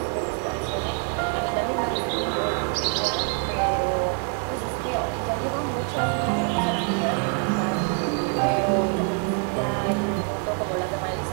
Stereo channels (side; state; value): left; quieter; 39.9 dB